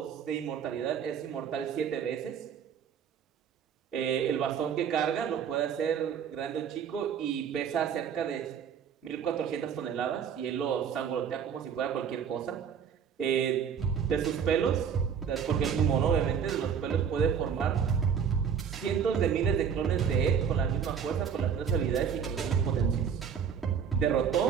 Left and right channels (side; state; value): left; quieter; 7.5 dB